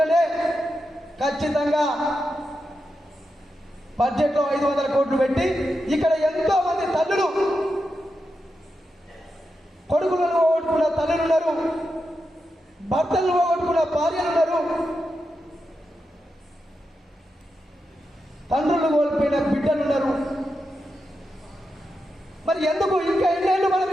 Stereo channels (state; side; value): normal; both; correlation 0.87